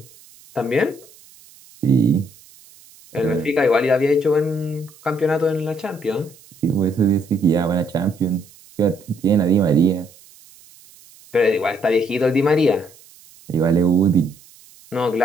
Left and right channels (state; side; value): noise; right; hiss, 25 dB below the sound